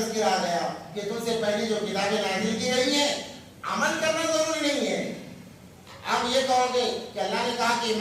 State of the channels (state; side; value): identical; both; correlation 1.00